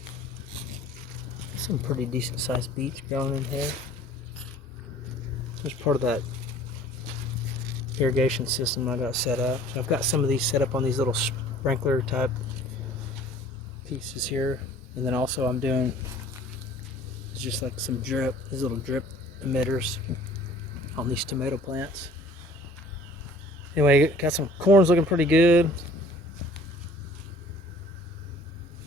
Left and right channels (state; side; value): normal; both; correlation 0.51